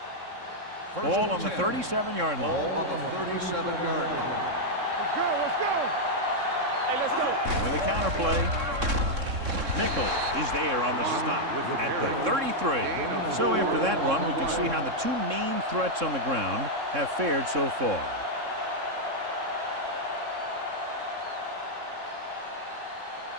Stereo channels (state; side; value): late; left; 3.6 ms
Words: Ball on the 37-yard Ball line. on the 37-yard line. Let's go, let's go. Hey, let's go. With a counterplay. Nichols is there on the stop at the 33. So after that run, we can see how the 2 main threats on the ground have fared so far.